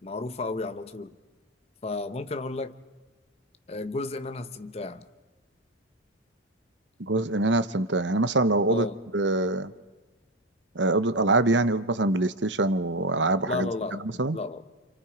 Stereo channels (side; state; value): both; normal; correlation 0.14